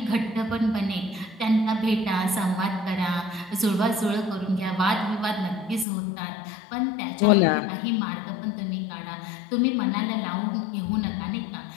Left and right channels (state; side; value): drops out; right; at 5.9 s